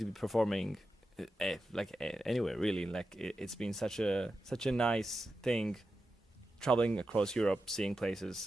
be performing. Anywhere really. Like it's been such a nice thing, traveling across Europe, seeing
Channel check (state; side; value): normal; both; correlation 0.90